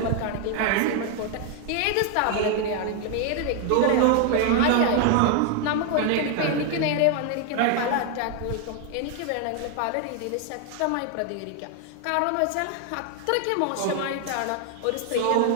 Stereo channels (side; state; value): both; different; correlation 0.00